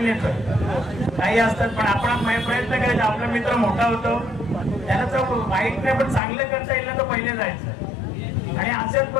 काही असतात पण आपण प्रयत्न करायचा आपला मित्र मोठा होतो त्याला तर वाईट नाही पण चांगलं करता येईल ना तर पहिले जायचं. आणि अशाच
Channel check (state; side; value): drops out; right; at 6.2 s